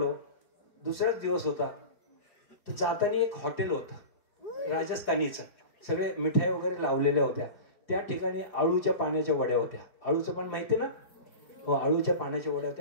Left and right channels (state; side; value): late; right; 4.7 ms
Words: दुसराच दिवस होता. तर जाताना एक हॉटेल होतं राजस्थानीचं, सगळे मिठाई वगैरे लावलेल्या होत्या. त्या ठिकाणी आळूच्या पाण्याच्या वड्या होत्या. आळूचं पण माहिती ना? हो, आळूच्या पाण्याच्या वड्या